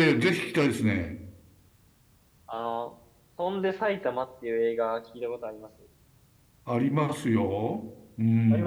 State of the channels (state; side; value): identical; both; correlation 1.00